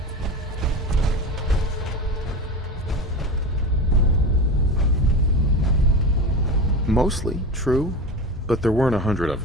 Mostly true, but there weren't 100 of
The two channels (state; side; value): normal; both; correlation 0.27